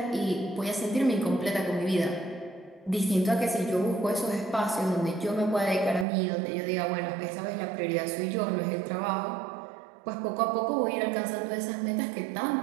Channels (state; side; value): drops out; left; at 6.1 s